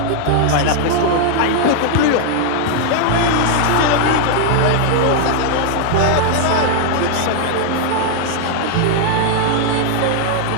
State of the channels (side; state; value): both; different; correlation 0.00